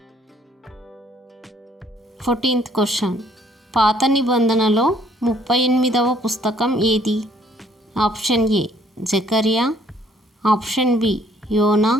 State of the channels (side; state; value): both; normal; correlation 0.63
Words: 14th question. పాత నిబంధనలో 38వ పుస్తకం ఏది? ఆప్షన్ ఏ జకర్యా, ఆప్షన్ బి యోనా,